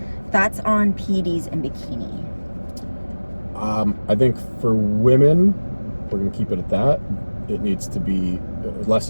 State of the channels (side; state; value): both; inverted; correlation -1.00